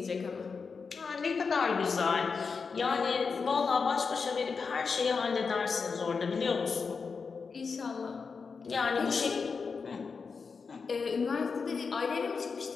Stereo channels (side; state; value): right; quieter; 5.2 dB